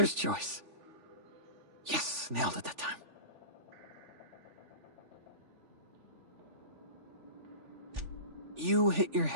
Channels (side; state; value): left; late; 3.4 ms